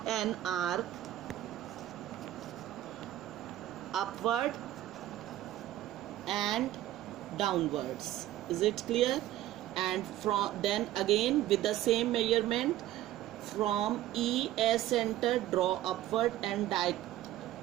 an arc upward and downwards. Is it clear? And from then again with the same measurement, from E as center, draw upward and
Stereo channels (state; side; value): quieter; left; 14.0 dB